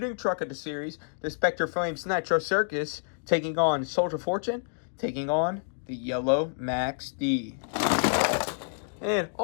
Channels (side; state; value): right; silent; digital silence